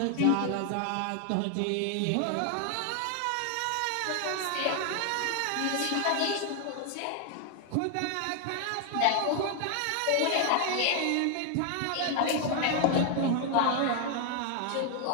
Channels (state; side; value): different; both; correlation 0.00